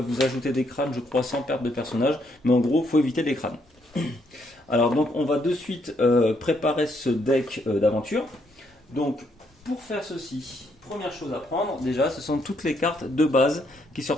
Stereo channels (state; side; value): normal; both; correlation 0.73